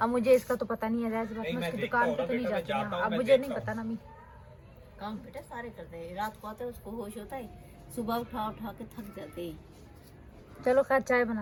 अब मुझे इसका तो पता नहीं है, मैं नहीं, मैं उसकी देखता दुकान हूँ पे ना तो नहीं बेटा, मैं जाती जाता ना, हूँ, अब मैं मुझे नहीं देखता पता ना। मैं काम बेटा सारे करते हैं, रात को आते हैं उसको होश होता है, सुबह उठा के थक जाते हैं। चलो खैर चाय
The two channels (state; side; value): identical; both; correlation 1.00